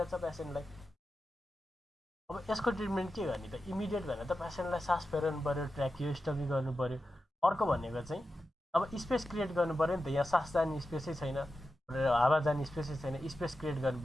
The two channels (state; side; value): normal; both; correlation 0.91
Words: पेसेन्टलाई। अब यसको ट्रिटमेन्ट के गर्ने त? इमिडिएट भनेर त पेसेन्टलाई सास फेर्नु पऱ्यो, ट्र्याकियोस्टोमी गर्नु पऱ्यो। अर्को भनेको चाहिँ अब स्पेस क्रिएट गर्नु पऱ्यो नि त, यहाँ सास जाने स्पेसै छैन, हावा जाने स्पेसै छैन, स्पेस क्रिएट गर्नु